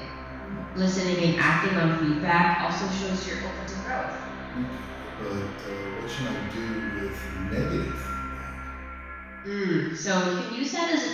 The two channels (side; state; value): both; identical; correlation 1.00